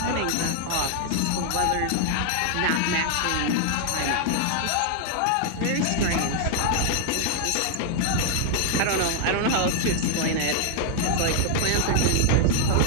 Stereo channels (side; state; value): both; different; correlation -0.01